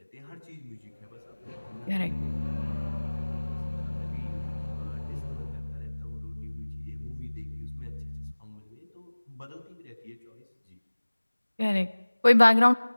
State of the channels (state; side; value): inverted; both; correlation -1.00